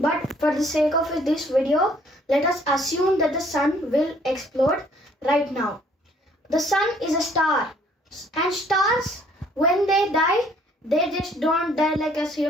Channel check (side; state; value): both; normal; correlation 0.61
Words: but for the sake of this video, let us assume that the sun will explode right now. The sun is a star, and stars, when they die, they just don't die like us